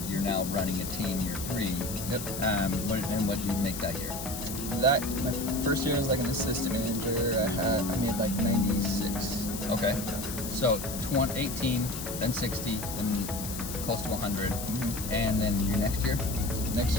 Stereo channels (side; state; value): left; noise; hiss, 7 dB below the sound